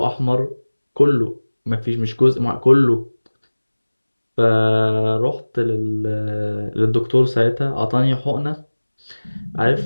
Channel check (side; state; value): both; inverted; correlation -1.00